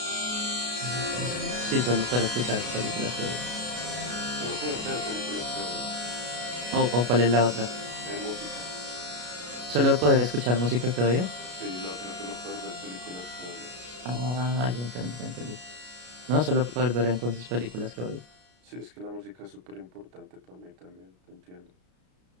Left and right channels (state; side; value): late; left; 33 ms